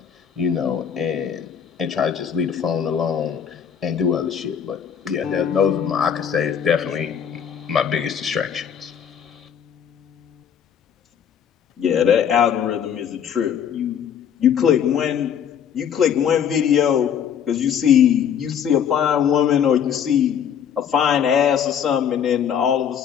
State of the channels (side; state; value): right; quieter; 8.3 dB